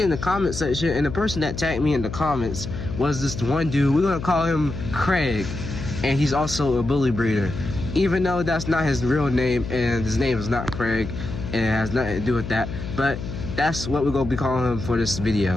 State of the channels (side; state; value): left; noise; hum, 8 dB below the sound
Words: in the comment section, and the person that tagged me in the comments was this one dude. We're gonna call him Craig, and he's also a bully breeder, even though that's not his real name, and his name is not Craig, and it has nothing to do with that. But that's what we're gonna be calling him for this